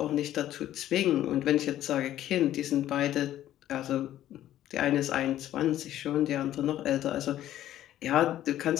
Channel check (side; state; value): right; quieter; 12.7 dB